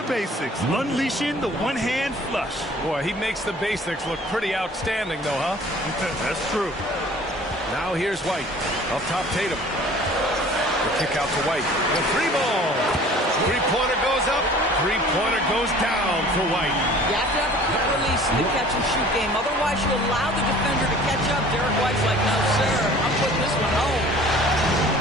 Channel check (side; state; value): both; normal; correlation 0.49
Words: basics. Unleashing the one-hand flush. Boy, he makes the basics look pretty outstanding, though, huh? That's true. Now here's White. Up top, Tatum. The kick out to White. The three ball. Three-pointer goes up. Three-pointer goes down for White. You have to have a quick release in the catch-and-shoot game. Otherwise, you allow the defender to catch up. Derek White's like, no, sir. I'm putting this one home.